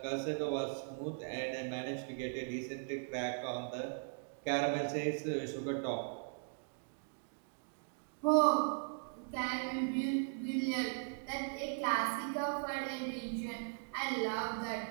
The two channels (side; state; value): left; silent; digital silence